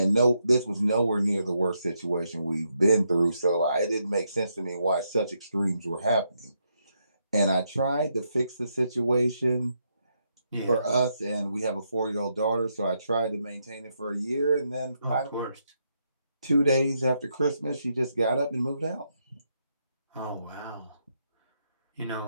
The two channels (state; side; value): inverted; both; correlation -0.79